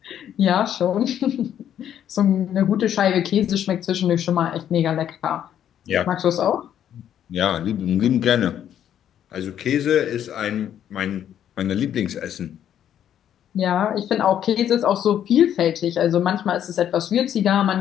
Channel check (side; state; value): right; quieter; 10.1 dB